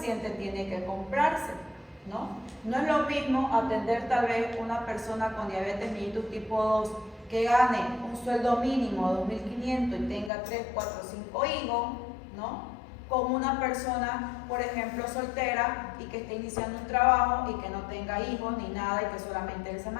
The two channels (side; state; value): right; drops out; at 10.3 s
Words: tiene que comprarse, ¿no? No es lo mismo atender tal vez una persona con diabetes mellitus tipo 2 que gane un sueldo mínimo de 2.500 y tenga 3, 4, 5 hijos, ¿no? Con una persona, por ejemplo, soltera y que esté iniciando un trabajo y que no tenga hijos ni nada y que solamente él se